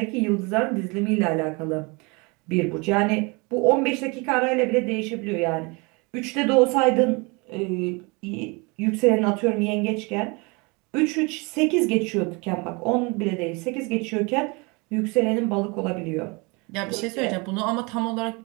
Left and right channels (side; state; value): left; quieter; 28.5 dB